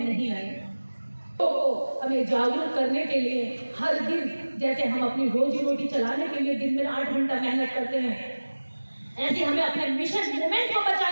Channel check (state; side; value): inverted; both; correlation -1.00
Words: नहीं आएंगे। तो हमें जागरूक करने के लिए हर दिन जैसे हम अपनी रोजी रोटी चलाने के लिए दिन में 8 घंटा मेहनत करते हैं, ऐसे हमें अपने मिशन मूवमेंट को